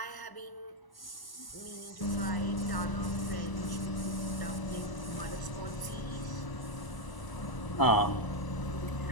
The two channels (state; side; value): late; right; 1.0 ms